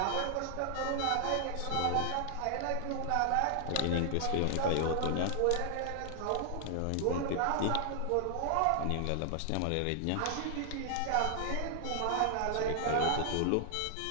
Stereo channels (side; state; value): both; different; correlation 0.00